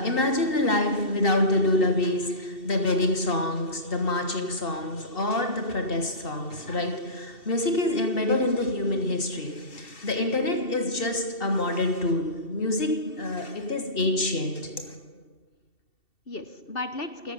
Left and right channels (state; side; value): late; right; 2.7 ms